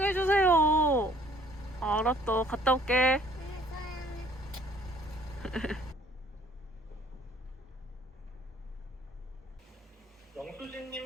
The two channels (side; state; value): both; normal; correlation 0.58